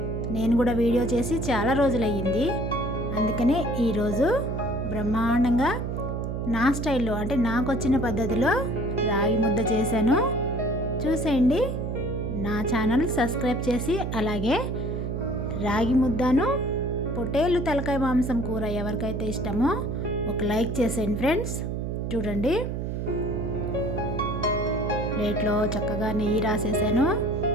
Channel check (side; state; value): right; noise; hum, 3 dB below the sound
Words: నేను కూడా వీడియో చేసి చాలా రోజులయ్యింది. అందుకనే ఈరోజు బ్రహ్మాండంగా నా స్టైల్లో, అంటే నాకు వచ్చిన పద్ధతిలో రాగి ముద్ద చేశాను. చూసేయండి. నా ఛానల్ సబ్స్క్రైబ్ చేసి, అలాగే రాగి ముద్దను పొట్టేలు తలకాయ మాంసం కూర ఎవరికైతే ఇష్టమో ఒక లైక్ చేసేయండి ఫ్రెండ్స్. చూడండి, ప్లేట్లో చక్కగా నెయ్యి రాసేసాను.